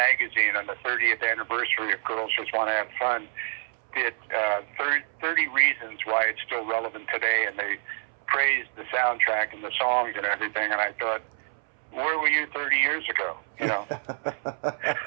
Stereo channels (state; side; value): silent; left; 60 dB below the other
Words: on the 30th anniversary of Girls Just Want to Have Fun did 30 reasons why it's still relevant today, and they praised the soundtrack and the songs and everything. And I thought, where were you 30 years ago? You know.